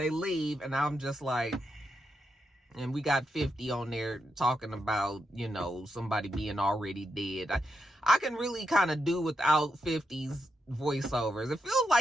leave, and I'm just like, and we got 50 on there talking about, you know, somebody being already dead. I can really kind of do without 50's voiceovers. It feels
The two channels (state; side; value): normal; both; correlation 0.84